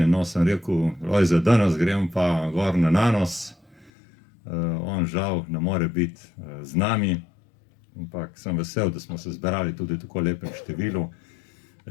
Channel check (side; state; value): right; drops out; at 3.9 s